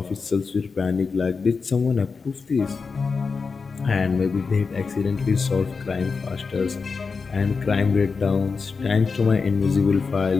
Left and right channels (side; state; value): right; quieter; 4.8 dB